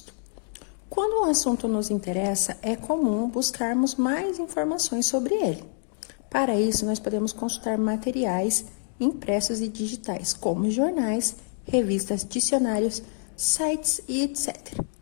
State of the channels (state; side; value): silent; right; 60 dB below the other